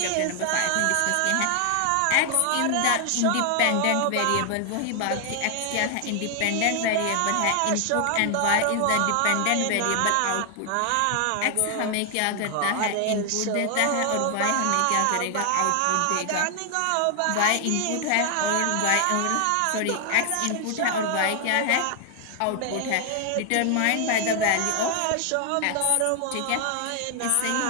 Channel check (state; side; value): different; both; correlation 0.00